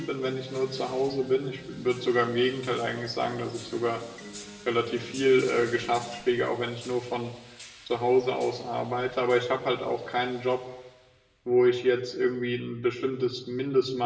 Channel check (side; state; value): both; identical; correlation 1.00